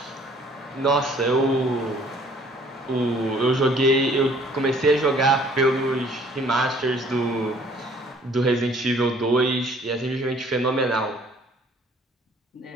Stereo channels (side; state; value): both; normal; correlation 0.57